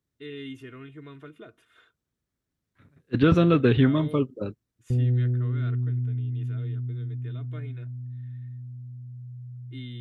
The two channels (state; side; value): identical; both; correlation 1.00